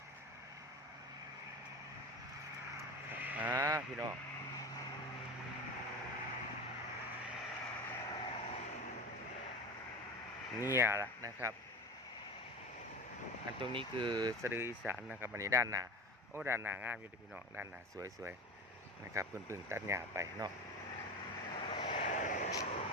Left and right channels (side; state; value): both; normal; correlation 0.29